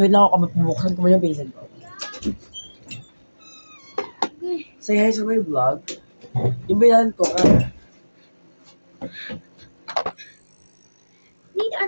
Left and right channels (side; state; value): both; inverted; correlation -1.00